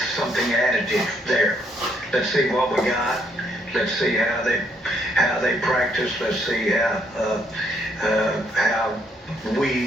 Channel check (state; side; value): normal; both; correlation 0.71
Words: something additive there. Let's see what we got. Let's see how they practice. Let's see how